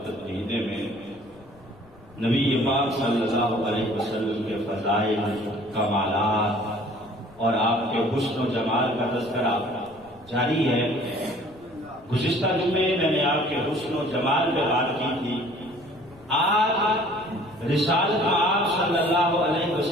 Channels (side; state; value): left; noise; rumble, 26 dB below the sound